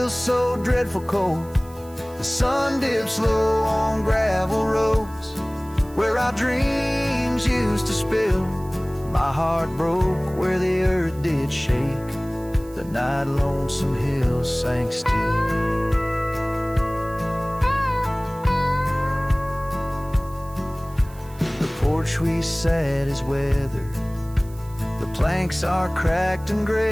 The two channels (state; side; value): noise; right; hiss, 24 dB below the sound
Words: so dreadful cold. The sun dips low on gravel roads where our dreams used to spill. My heart broke where the earth did shake, the night Lonesome Hill sank still. The porch we sat is weathered, the planks are cracked and